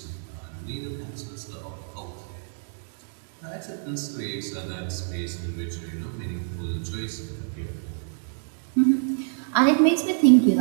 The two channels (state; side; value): silent; left; digital silence